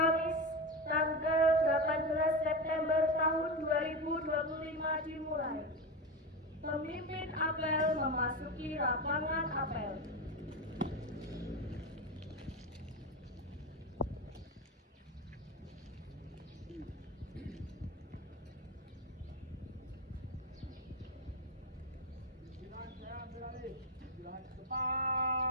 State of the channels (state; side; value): normal; both; correlation 0.18